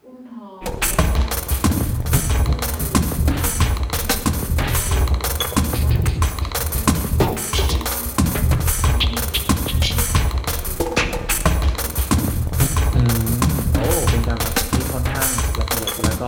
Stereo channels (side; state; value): both; identical; correlation 1.00